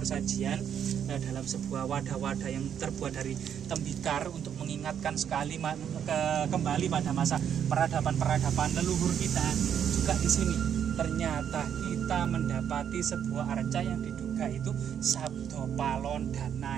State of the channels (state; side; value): quieter; left; 8.7 dB